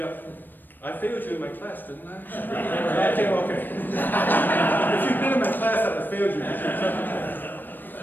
I failed you in my class, didn't I? Okay. If you'd been in my class, I'd have failed you.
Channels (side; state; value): right; late; 0.092 ms